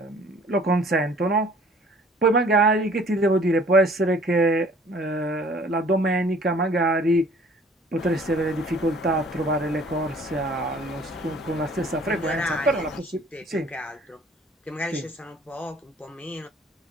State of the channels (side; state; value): both; normal; correlation 0.53